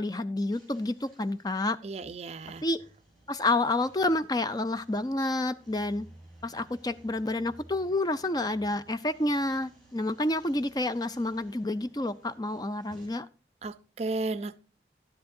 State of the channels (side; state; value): both; normal; correlation 0.56